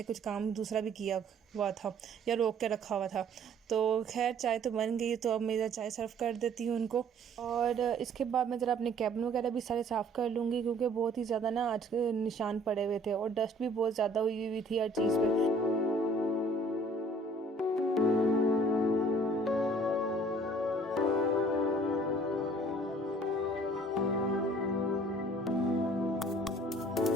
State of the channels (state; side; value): normal; both; correlation 0.55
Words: कुछ काम दूसरा भी किया हुआ था या रोक के रखा हुआ था। तो खैर चाय तो बन गई, तो अब मेरा चाय सर्व कर देती हूँ उनको। और इसके बाद मैं ज़रा अपने कैबिन वगैरह भी सारे साफ़ कर लूँगी, क्योंकि बहुत ही ज़्यादा ना आज निशान पड़े हुए थे और डस्ट भी बहुत ज़्यादा हुई हुई थी हर चीज़ पर।